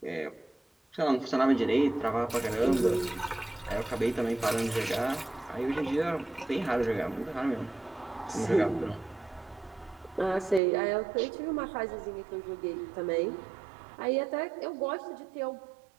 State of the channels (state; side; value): drops out; left; at 10.6 s